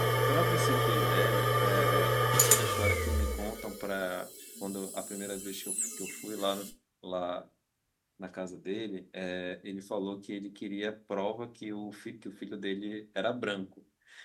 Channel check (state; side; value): identical; both; correlation 1.00